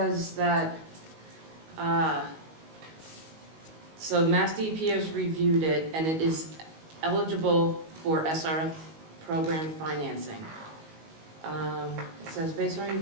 that, so Mass DEP has reviewed it, and it is eligible for SRF program financing. It says, based on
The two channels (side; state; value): left; late; 19 ms